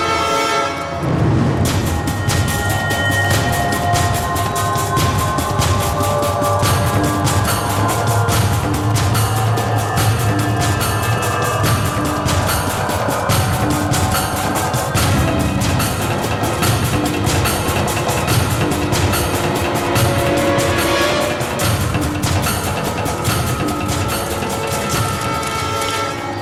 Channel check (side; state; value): both; identical; correlation 1.00